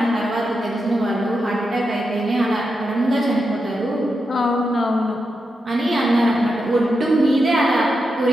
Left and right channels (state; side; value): normal; both; correlation 0.87